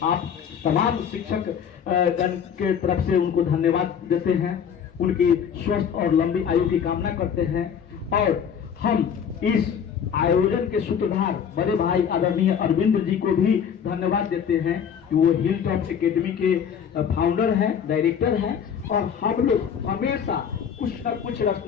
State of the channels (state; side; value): quieter; right; 7.8 dB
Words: आप तमाम शिक्षक गण के तरफ से उनको धन्यवाद देते हैं, उनकी स्वस्थ और लंबी आयु की कामना करते हैं। और हम इस आयोजन के सूत्रधार बड़े भाई आदरणीय अरविंद जी को भी धन्यवाद देते हैं कि वो हिल टॉप एकेडमी के फाउंडर हैं, डायरेक्टर हैं, और हम लोग हमेशा कुछ न कुछ